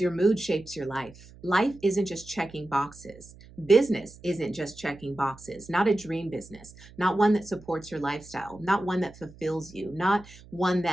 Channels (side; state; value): right; noise; hum, 21 dB below the sound